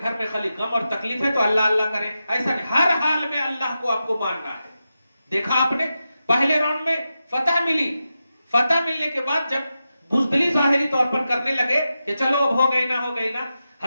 में खाली गम और तकलीफ है तो अल्लाह अल्लाह करें, ऐसा नहीं। हर हाल में अल्लाह को आपको मानना है। देखा आपने पहले राउंड में फतह मिली, फतह मिलने के बाद जब बुज़दिली जाहिरी तौर पर करने लगे कि चलो अब हो गई ना हो गई ना,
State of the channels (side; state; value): both; inverted; correlation -0.90